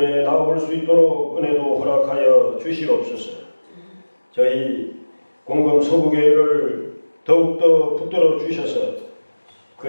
나올 수 있도록 은혜도 허락하여 주시옵소서. 저희 공금 서부교회를 더욱더 붙들어 주셔서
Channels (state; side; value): inverted; both; correlation -1.00